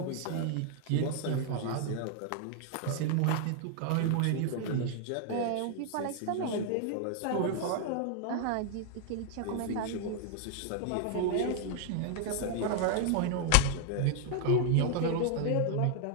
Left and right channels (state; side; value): different; both; correlation 0.00